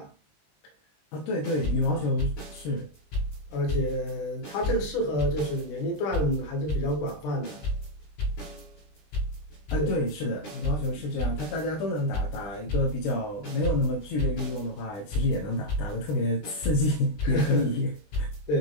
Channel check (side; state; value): right; late; 20 ms